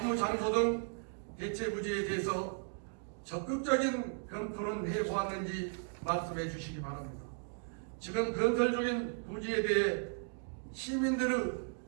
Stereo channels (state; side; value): silent; left; 54 dB below the other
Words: 장소 등 대체 부지에 대해서 적극적인 검토는 해보았는지 말씀해 주시기 바랍니다. 지금 건설 중인 부지에 대해 시민들의